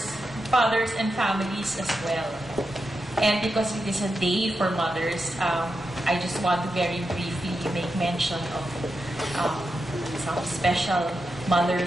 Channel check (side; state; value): both; normal; correlation 0.88